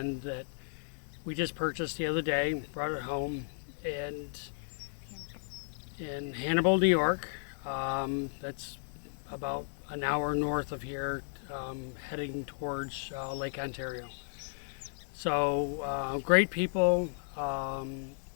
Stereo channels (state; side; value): silent; right; digital silence